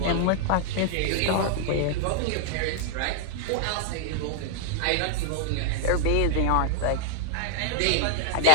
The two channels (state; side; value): different; both; correlation 0.00